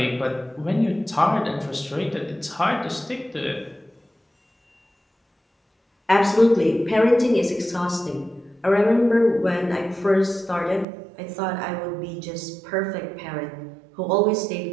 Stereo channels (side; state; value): left; drops out; at 10.9 s